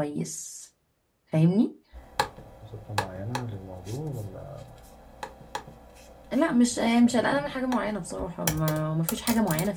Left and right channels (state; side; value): identical; both; correlation 1.00